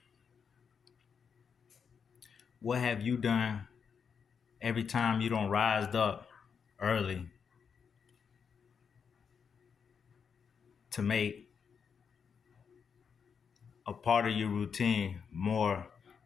What have you done every time you don't rise up early to make a part of your routine more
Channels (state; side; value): quieter; right; 6.5 dB